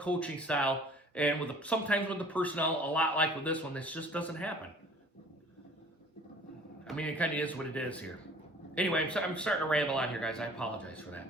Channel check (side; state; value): both; normal; correlation 0.50